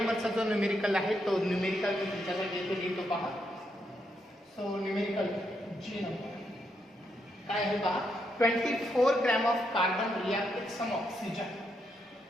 जो न्यूमेरिकल आहे तो न्यूमेरिकल मी तुमच्याकडे लिहितो पहा. सो न्यूमेरिकल जे नंबर काय आहे पहा. 24 gram of carbon react with some oxygen.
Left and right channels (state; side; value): normal; both; correlation 0.79